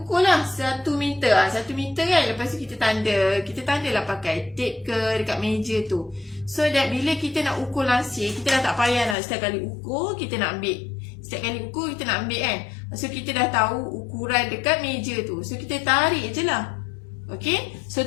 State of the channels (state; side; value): drops out; right; at 9.2 s